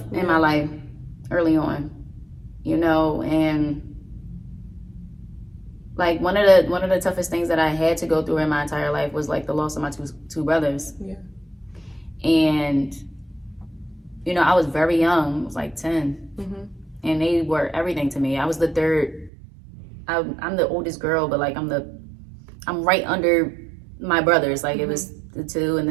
in my life early on, you know, and like one of the toughest things that I had to go through in my entire life was like the loss of my two brothers. Yeah. And you know, I was very young. I was like 10. And they were everything to me. I was the third. I'm the oldest girl, but like I'm right under my brothers. Like it was the two, and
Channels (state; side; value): drops out; left; at 19.3 s